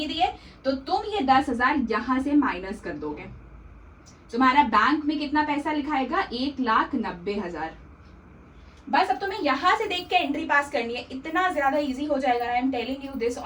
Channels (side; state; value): both; identical; correlation 1.00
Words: दिए। तो तुम ये 10,000 यहां से माइनस कर दोगे। तुम्हारा बैंक में कितना पैसा लिखाएगा, 1,90,000, बस अब तुम्हें यहाँ से देख के एंट्री पास करनी है, इतना ज्यादा इजी हो जाएगा। I am telling you this